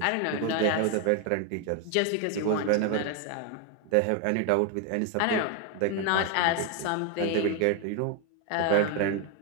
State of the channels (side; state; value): both; different; correlation 0.01